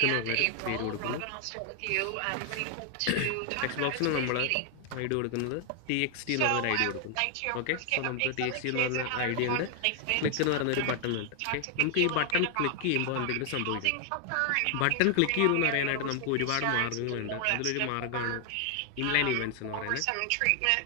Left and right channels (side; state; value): both; different; correlation 0.00